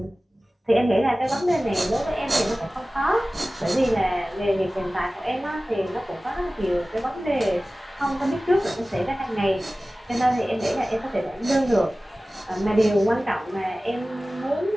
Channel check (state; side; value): normal; both; correlation 0.97